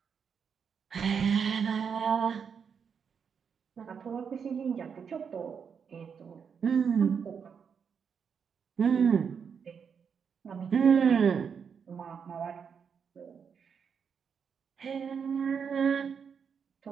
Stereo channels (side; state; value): left; quieter; 6.7 dB